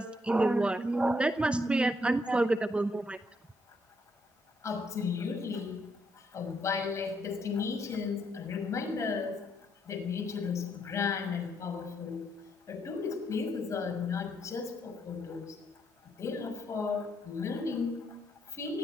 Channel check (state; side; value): normal; both; correlation 0.74